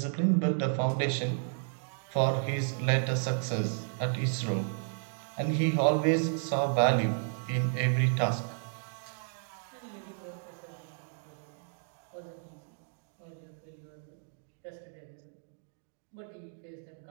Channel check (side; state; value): left; silent; digital silence